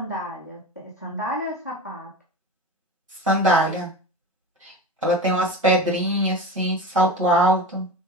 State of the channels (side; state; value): both; normal; correlation 0.29